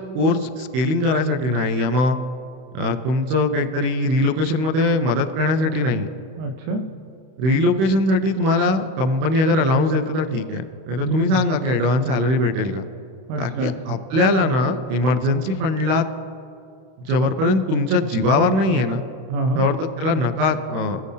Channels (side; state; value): left; late; 32 ms